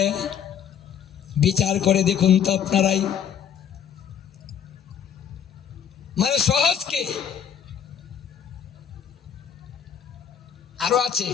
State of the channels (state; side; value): quieter; right; 8.4 dB